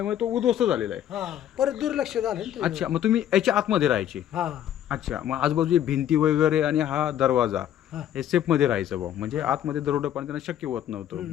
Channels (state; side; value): quieter; right; 10.9 dB